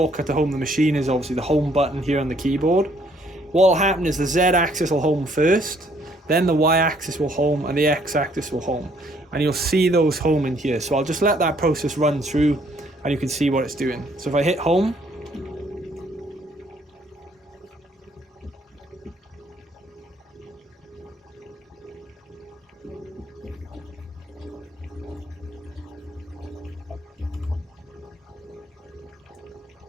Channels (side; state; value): both; normal; correlation 0.65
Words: to home the machine is obviously the home button here on the keyboard. What will happen is the Z axis will home first, then the Y axis will home, and the X axis will home. And you'll see those home in here. So I'll just let that process run through and you can see what it's doing. So if I hit home,